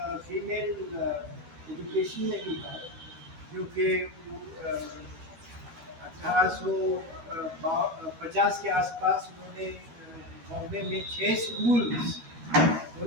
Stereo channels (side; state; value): left; late; 12 ms